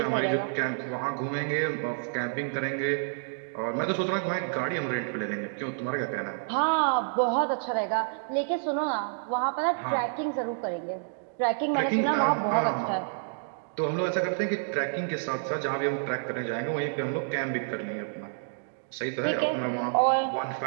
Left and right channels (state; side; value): silent; left; digital silence